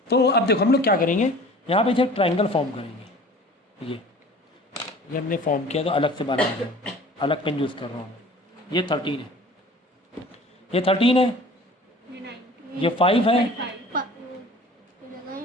तो अब देखो हम लोग क्या करेंगे, यहाँ पे एक ट्रायंगल फॉर्म करेंगे, ये हमने फॉर्म किया तो अलग से बना रहे हैं, अलग पेन यूज़ कर रहा हूँ, ये 13 है, ये 13 है, ये 5 है,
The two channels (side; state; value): both; normal; correlation 0.45